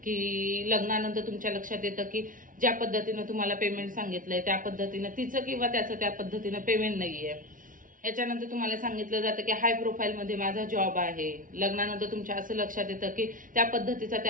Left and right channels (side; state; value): left; late; 0.39 ms